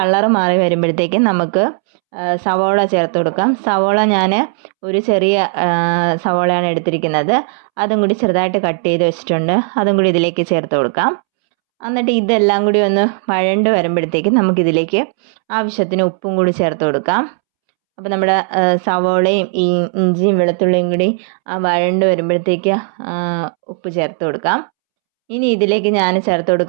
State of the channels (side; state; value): left; silent; 70 dB below the other